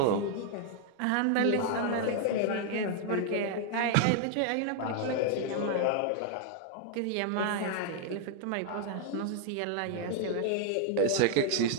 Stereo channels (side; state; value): both; different; correlation 0.00